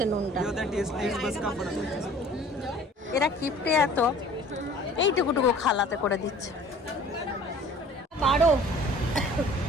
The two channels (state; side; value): normal; both; correlation 0.48